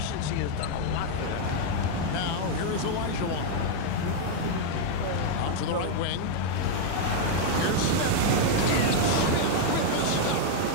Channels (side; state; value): both; different; correlation 0.00